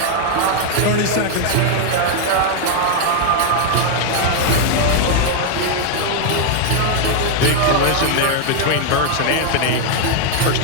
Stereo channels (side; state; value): both; different; correlation 0.00